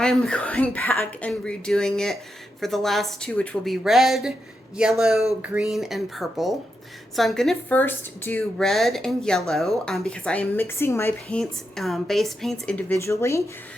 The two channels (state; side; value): normal; both; correlation 0.85